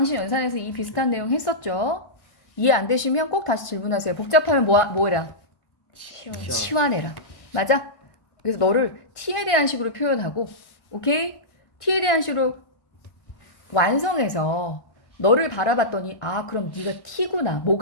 연산에서 이 비슷한 내용 했었죠? 이해 안 되시면 꼭 다시 질문하세요. 복잡하면 뭐해라? 치워. 치환해라. 맞아? 그래서 너를 t에 대한 식으로 표현하고, 오케이? t에 대한 식으로 완성해서 너를 바라봤더니, 아, 그럼 네가 t구나.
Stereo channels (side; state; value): right; late; 1.4 ms